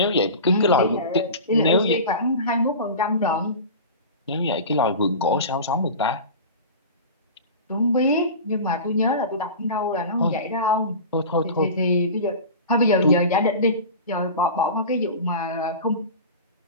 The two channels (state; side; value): inverted; both; correlation -0.32